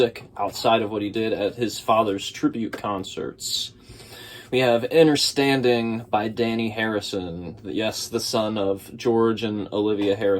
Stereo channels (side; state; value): both; identical; correlation 1.00